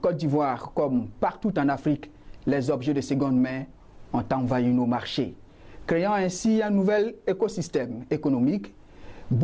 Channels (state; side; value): identical; both; correlation 1.00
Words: d'Ivoire, comme partout en Afrique, les objets de seconde main ont envahi nos marchés, créant ainsi un nouvel écosystème économique,